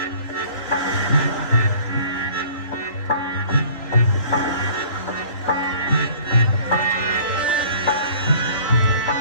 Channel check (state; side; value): late; right; 3.2 ms